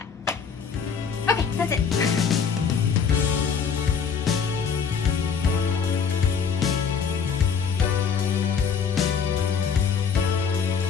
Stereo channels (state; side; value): quieter; right; 6.5 dB